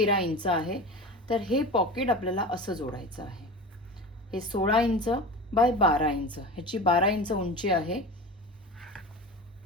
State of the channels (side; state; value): both; normal; correlation 0.31